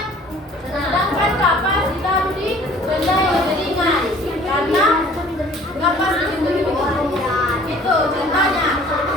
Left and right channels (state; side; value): normal; both; correlation 0.52